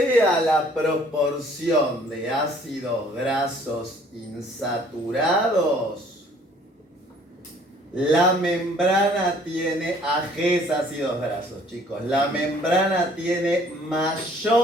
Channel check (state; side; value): normal; both; correlation 0.57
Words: la proporción de ácidos grasos insaturados, la membrana tiene, AGs ácidos grasos, chicos, la membrana tiene